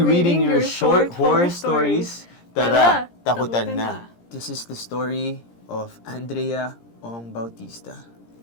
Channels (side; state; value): right; late; 17 ms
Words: reading your short horror stories. Tara, takutan na. This is the story of Andrea Ong Bautista.